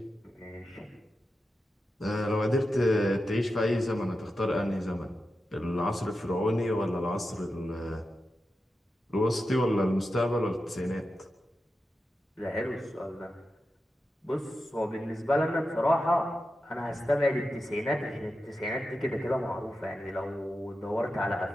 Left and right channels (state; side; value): normal; both; correlation 0.91